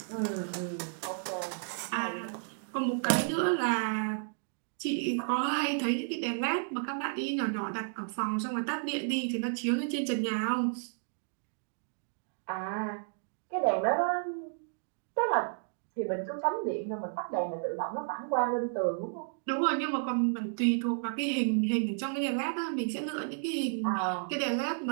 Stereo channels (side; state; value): left; silent; digital silence